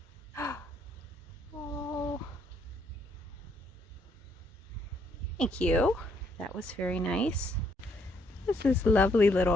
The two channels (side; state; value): both; normal; correlation 0.71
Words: Oh, thank you. That was very nice. This is this lovely